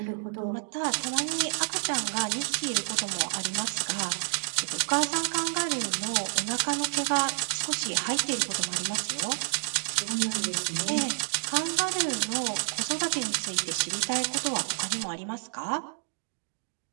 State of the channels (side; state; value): left; silent; digital silence